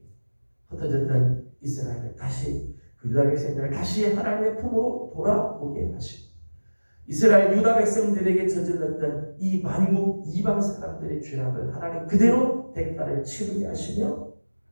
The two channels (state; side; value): inverted; both; correlation -1.00